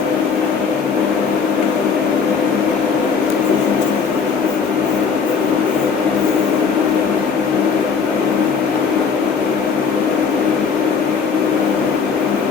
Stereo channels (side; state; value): right; quieter; 5.7 dB